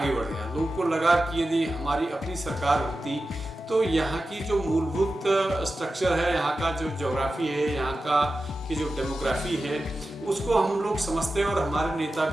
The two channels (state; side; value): normal; both; correlation 0.93